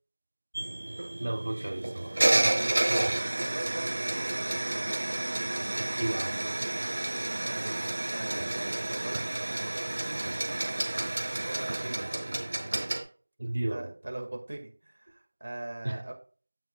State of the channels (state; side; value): inverted; both; correlation -1.00